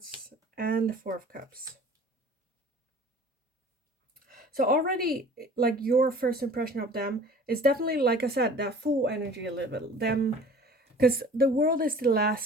and the Four of Cups. So already, like, your first impression of them is definitely, like I said, that Fool energy a little bit. Them, because the World is the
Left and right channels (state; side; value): normal; both; correlation 0.46